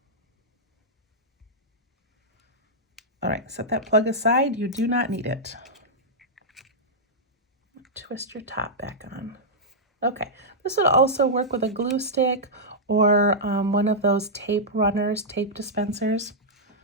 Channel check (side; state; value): both; normal; correlation -0.09